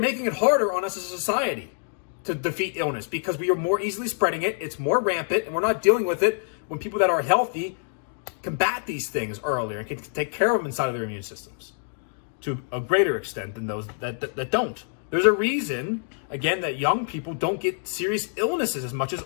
it harder on us as a society to defeat illness because we are more easily spreading it. It's more rampant, and we're not dealing with it when people that are healthy combat these things earlier and can take care of them inside of their immune systems to a greater extent than those that don't. There's a reason, again, that young people don't get serious illnesses as much as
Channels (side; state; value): right; silent; digital silence